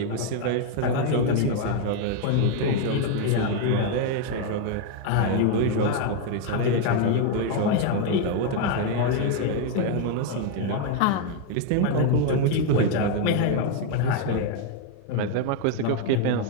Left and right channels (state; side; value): different; both; correlation 0.01